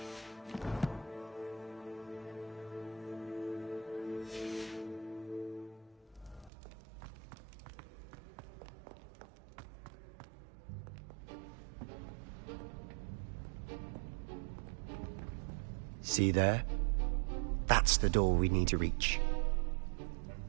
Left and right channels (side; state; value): left; drops out; at 6.5 s